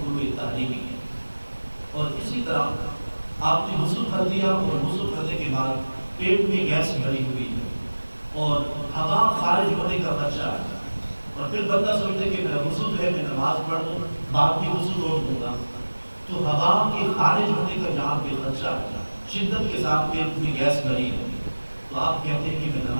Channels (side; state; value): both; inverted; correlation -1.00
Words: تحریمی ہے. اور اسی طرح آپ نے وضو کر دیا اور وضو کرنے کے بعد پیٹ میں گیس بھری ہوئی ہے اور ہوا خارج ہونے کا خدشہ ہے اور پھر بندہ سوچتے کہ میرا وضو جو ہے میں نماز پڑھ لوں بعد میں وضو روک دوں گا، تو ہوا کے خارج ہونے کا جہاں پہ خدشہ ہے، شدت کے ساتھ پیٹ میں گیس بھری ہے، تو آپ کہتے ہیں کہ میں